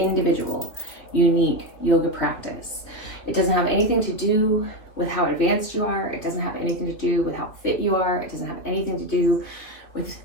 unique yoga practice. It doesn't have anything to do with how advanced you are. It doesn't have anything to do with how fit you are. It doesn't have anything to do with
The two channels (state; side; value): late; right; 3.4 ms